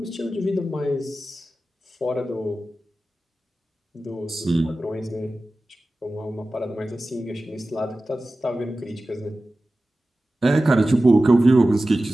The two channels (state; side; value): normal; both; correlation 0.95